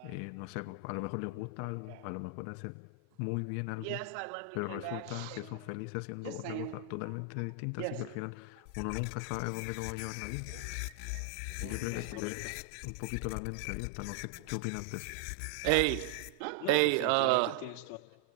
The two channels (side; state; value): both; different; correlation 0.00